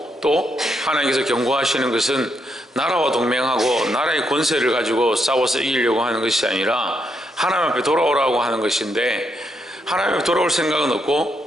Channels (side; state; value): both; normal; correlation 0.79